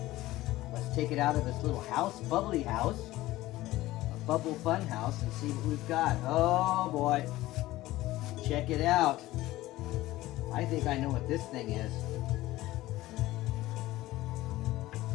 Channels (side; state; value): right; quieter; 17.0 dB